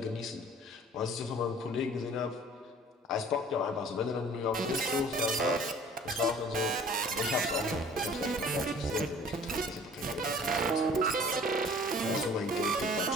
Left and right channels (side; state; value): both; normal; correlation 0.50